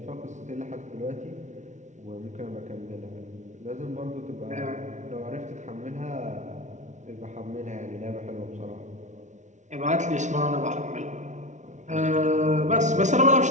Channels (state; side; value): late; left; 0.35 ms